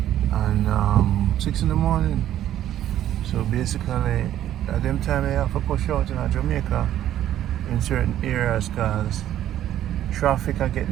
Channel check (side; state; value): left; quieter; 11.9 dB